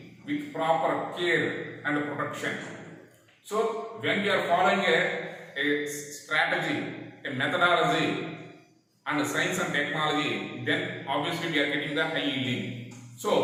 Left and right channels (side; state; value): both; identical; correlation 1.00